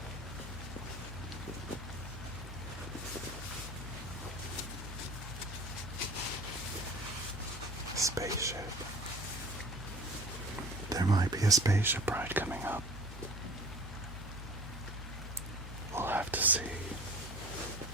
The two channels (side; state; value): both; normal; correlation 0.43